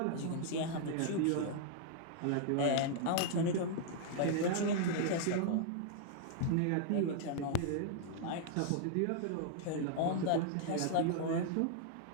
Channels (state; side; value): different; both; correlation -0.01